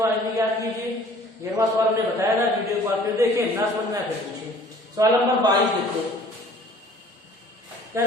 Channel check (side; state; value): both; normal; correlation 0.51